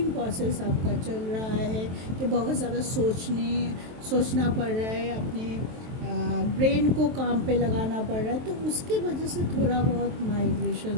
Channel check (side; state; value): left; late; 23 ms